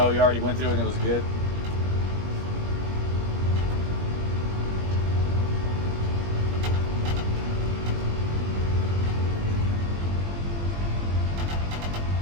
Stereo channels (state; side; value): late; left; 21 ms